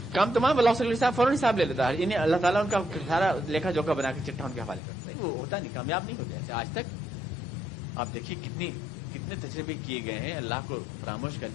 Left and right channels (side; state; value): right; drops out; at 4.8 s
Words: کام تمام اللہ صلی اللہ علیہ وسلم فوراً حساب لے لیتا ہے. یعنی اللہ تعالیٰ ان کا سارا لیکھا جوکھا بنا کے چٹا ان کے حوالے کرتا ہے. وہ ہوتا نہیں، کامیاب نہیں ہوتے ایسے. آج تک آپ دیکھیے کتنے تجربے کیے گئے ہیں اللہ کو فراموش کر